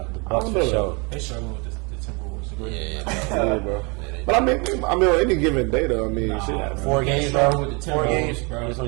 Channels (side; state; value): left; quieter; 30.5 dB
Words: The Bucks for sure. They struggle with the Timberwolves. The Grizzlies. Yeah, bro. But I mean, on any given day, though, I mean, shit. 4 games, struggle bro. with the 4 Timberwolves, games, bro. It's